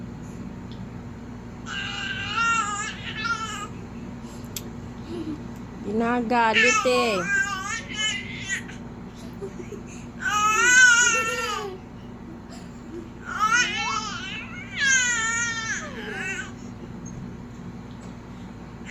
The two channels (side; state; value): both; identical; correlation 1.00